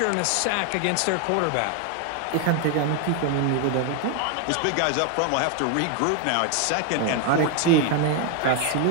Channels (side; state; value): both; different; correlation 0.00